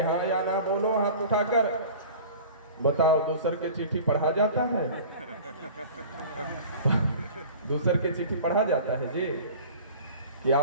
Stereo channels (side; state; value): both; inverted; correlation -0.42